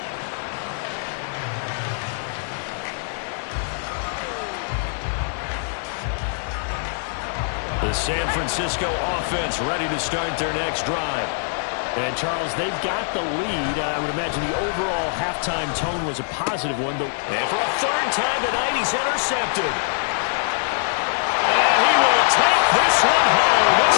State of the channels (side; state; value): right; silent; 63 dB below the other